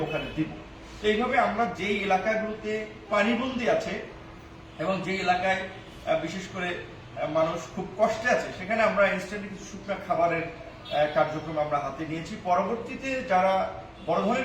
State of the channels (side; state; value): both; identical; correlation 1.00